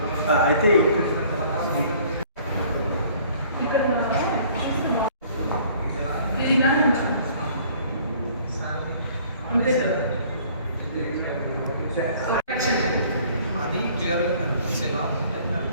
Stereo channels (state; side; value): inverted; both; correlation -0.55